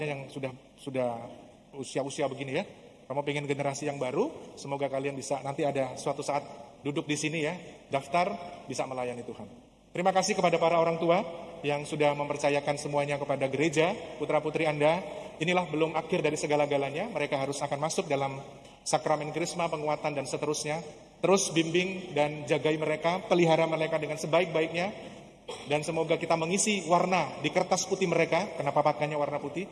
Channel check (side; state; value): both; identical; correlation 1.00